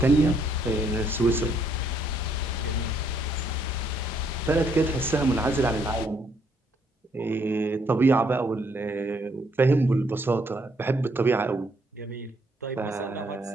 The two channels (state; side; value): normal; both; correlation 0.70